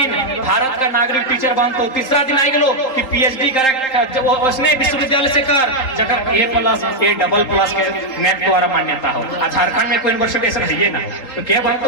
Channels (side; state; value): right; late; 3.8 ms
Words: भारत का नागरिक टीचर बनतो, तीसरा दिन आई गलो कि PhD करे उसने विश्वविद्यालय से कर जगह A+, A++ के नेट द्वारा मान्यता हो। झारखंड में कोई यूनिवर्सिटी ऐसा है ना, तो क्या